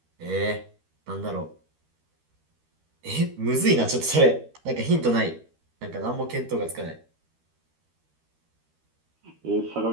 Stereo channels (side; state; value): left; late; 13 ms